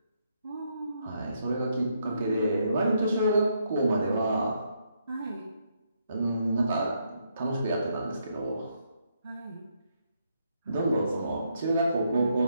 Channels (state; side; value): inverted; both; correlation -0.76